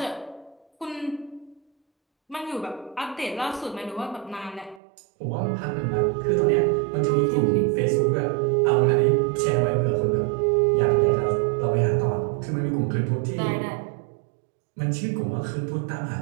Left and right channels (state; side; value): drops out; left; at 4.8 s